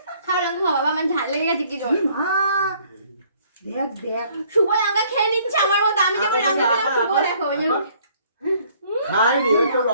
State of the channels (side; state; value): both; inverted; correlation -0.61